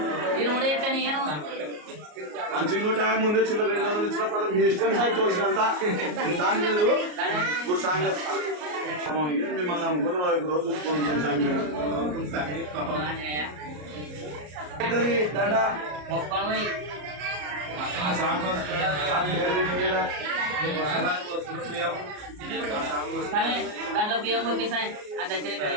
మీరు కూడా చెప్తాను నేను మంచిగా నూట ముందు చిన్న 200 ఇచ్చిన పదం మీ ఇష్టం సార్ తోచినంత దాని లేదు ఇప్పుడు సాంగ్ మిమ్మల్ని నమ్ముకుని రోజు చూసుకుంటాం దండ మొక్కలు పోయి స్వామి దాంట్లో బియ్యం పోయిస్తాయి ఆ దర్శనం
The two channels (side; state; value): left; late; 33 ms